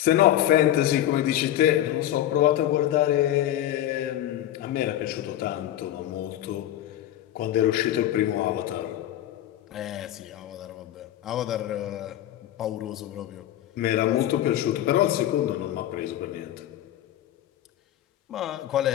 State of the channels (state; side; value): quieter; right; 12.7 dB